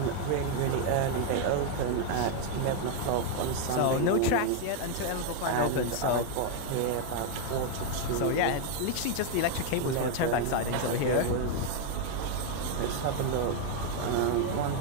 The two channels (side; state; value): both; different; correlation 0.01